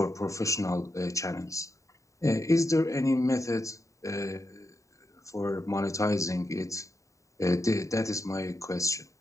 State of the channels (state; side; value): late; right; 0.16 ms